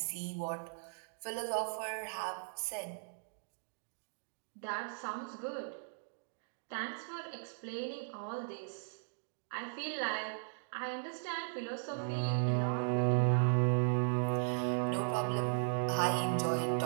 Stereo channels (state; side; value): silent; left; digital silence